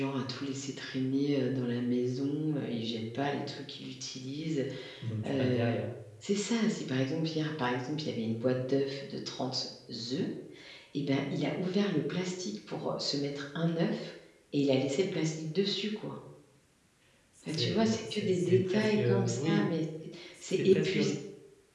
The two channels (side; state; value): both; identical; correlation 1.00